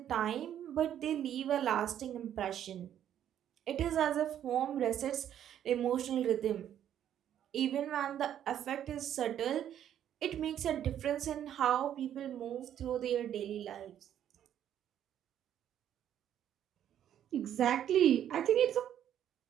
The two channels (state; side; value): quieter; left; 10.4 dB